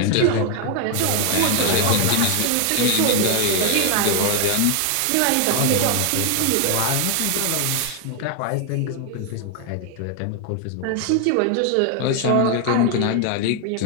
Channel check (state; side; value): different; both; correlation 0.01